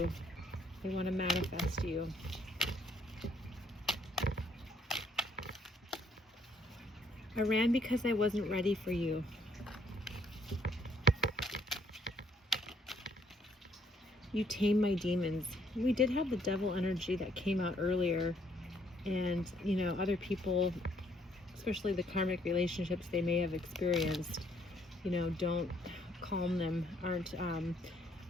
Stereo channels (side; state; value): both; normal; correlation 0.67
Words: They want to manifest you. I ran because I wasn't ready for you. You tame my demons. We did have the devil energy that came out earlier, and you know, other people, especially the karmic relationships they may have experienced, you know, don't calm them, aren't a